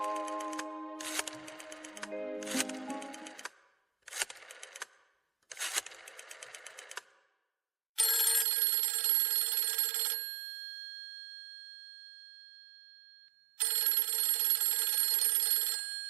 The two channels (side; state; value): left; drops out; at 8.5 s